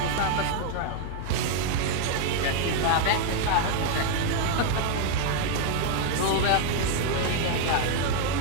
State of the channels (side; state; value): both; different; correlation 0.00